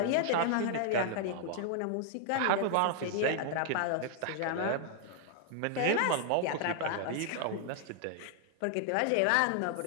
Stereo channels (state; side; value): different; both; correlation 0.00